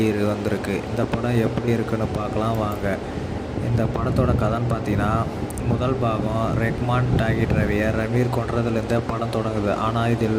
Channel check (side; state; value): both; identical; correlation 1.00